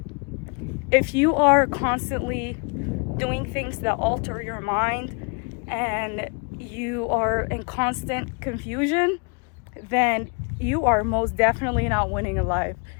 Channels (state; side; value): quieter; right; 36.5 dB